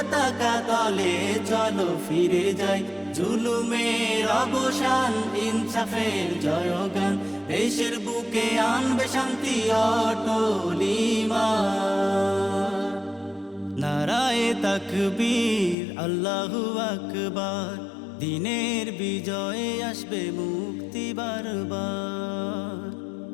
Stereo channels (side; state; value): right; drops out; at 15.8 s